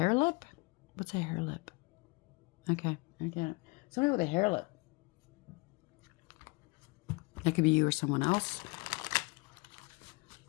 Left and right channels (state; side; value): quieter; right; 27.7 dB